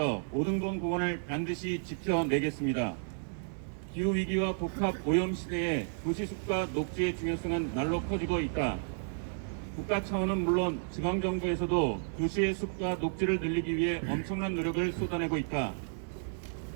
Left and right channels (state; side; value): silent; left; digital silence